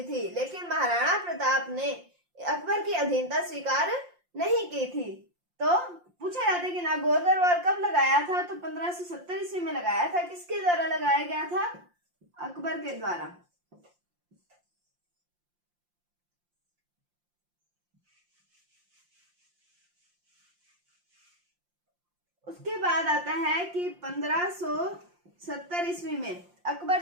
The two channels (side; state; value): left; late; 5.7 ms